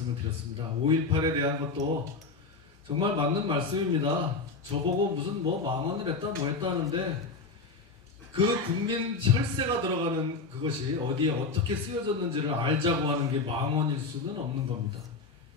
드렸습니다. 5.18에 대한 것도 정말 맞는 말씀입니다. 저보고 무슨 망언을 했다 뭐 했다 하는데 그 국민 혈세가 들어가는 그것이 어디에 어떻게 쓰여졌는지를 알자고 하는 게 망언일 수는 없는 겁니다.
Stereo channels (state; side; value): quieter; right; 4.1 dB